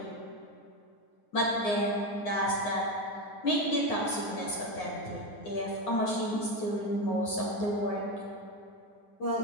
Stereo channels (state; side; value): late; right; 9.7 ms